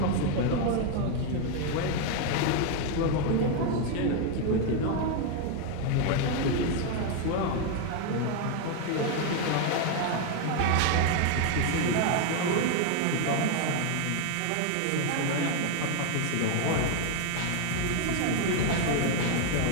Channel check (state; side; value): different; both; correlation 0.01